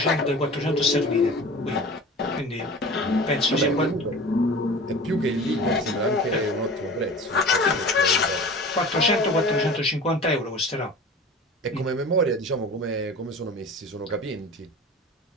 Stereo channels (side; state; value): both; normal; correlation 0.38